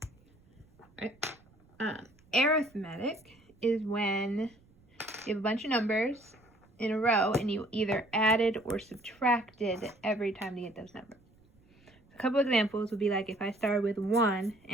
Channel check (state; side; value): noise; right; rumble, 30 dB below the sound